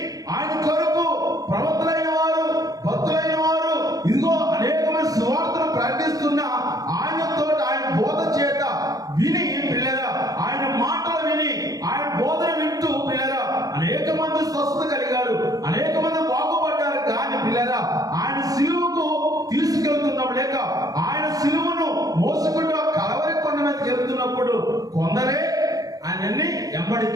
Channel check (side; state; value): left; late; 0.18 ms